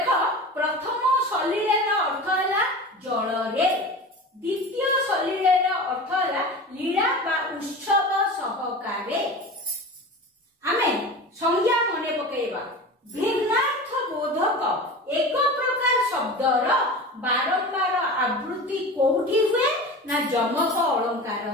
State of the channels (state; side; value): normal; both; correlation 0.32